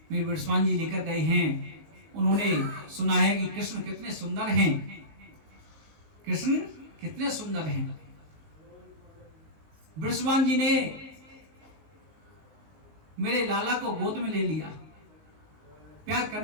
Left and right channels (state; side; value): late; left; 19 ms